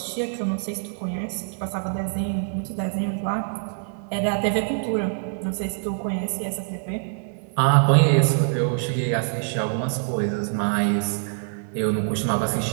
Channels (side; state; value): left; silent; digital silence